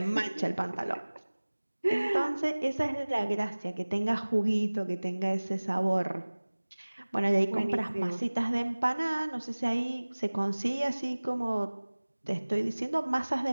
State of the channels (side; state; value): both; inverted; correlation -1.00